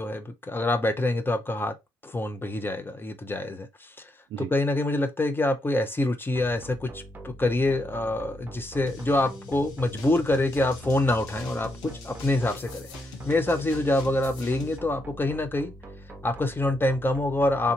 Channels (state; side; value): normal; both; correlation 0.80